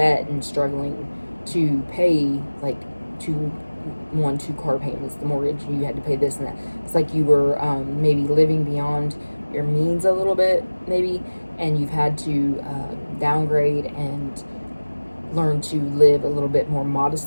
and struggling to pay, two car payments, the mortgage. You had to pay this and that. It's like you were maybe living beyond your means a little bit, maybe, and you've had to downgrade and learn to live a little bit more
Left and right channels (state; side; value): inverted; both; correlation -1.00